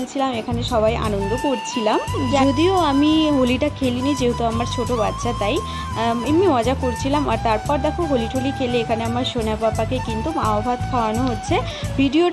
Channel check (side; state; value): both; identical; correlation 1.00